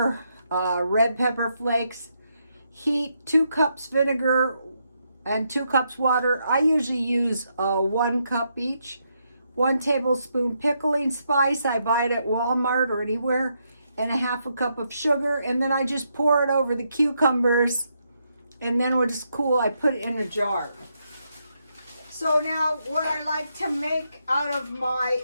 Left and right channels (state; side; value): inverted; both; correlation -0.79